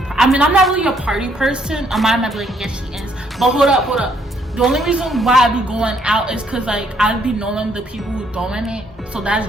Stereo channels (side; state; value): both; normal; correlation 0.69